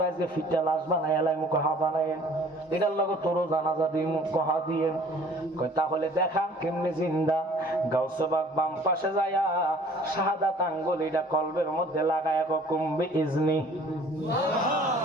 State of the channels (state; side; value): normal; both; correlation 0.52